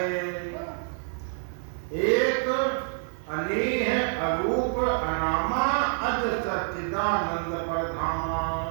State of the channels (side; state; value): left; silent; digital silence